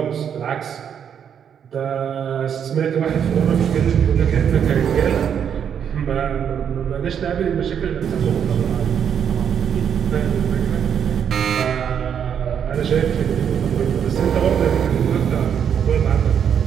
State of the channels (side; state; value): left; quieter; 8.2 dB